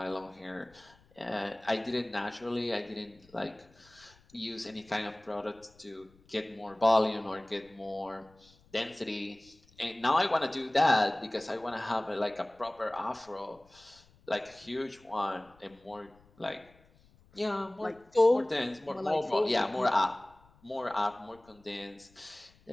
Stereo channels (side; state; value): left; noise; rumble, 29 dB below the sound